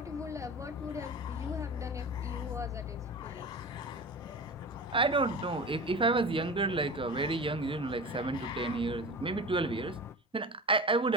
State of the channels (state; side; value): normal; both; correlation 0.31